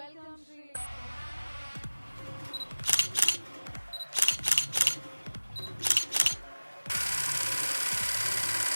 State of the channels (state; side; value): inverted; both; correlation -1.00